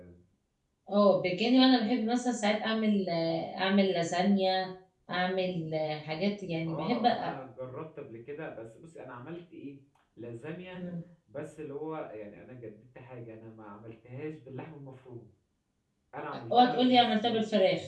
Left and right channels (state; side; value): identical; both; correlation 1.00